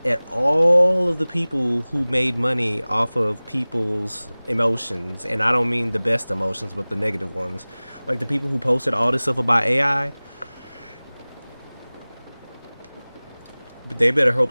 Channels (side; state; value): both; inverted; correlation -1.00